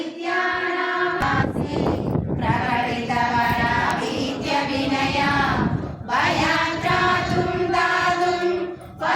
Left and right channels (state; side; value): identical; both; correlation 1.00